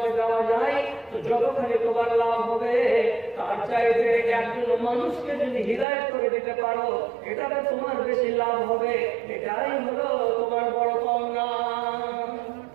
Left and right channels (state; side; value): drops out; left; at 5.9 s